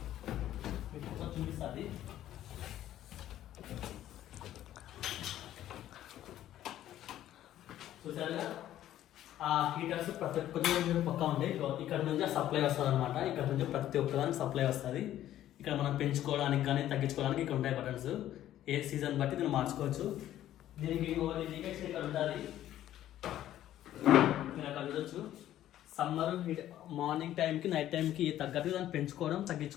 మీకు చూపిస్తుంది. చూసారుగా ఆ హీటర్స్ ప్రతి ఒక్క పక్కా ఉంటాయి. ఇక్కడ నుంచి సప్లై వస్తుంది అనమాట. ఇక్కడ నుంచి ప్రతి ఒక్కదానికి సప్లై వస్తుంది. ఇక్కడ మనం పెంచుకోవడానికి కానీ తగ్గించుకోవడానికి ఇక్కడ ఉంటాయి బటన్స్. ఏ సీజన్ బట్టి దీన్ని మార్చుకోవచ్చు. దీనికి ఇండికేషన్ ఇక్కడ ఉంటుంది, మీరు అక్కడ చూడొచ్చు. సమ్మర్ మార్నింగ్ టైంకి నైట్ టైంకి తగ్గట్టుగా దాన్ని పెంచుకోవడం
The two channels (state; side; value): quieter; right; 12.6 dB